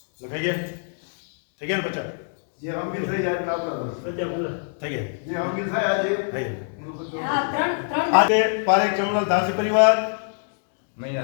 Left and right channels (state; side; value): silent; right; digital silence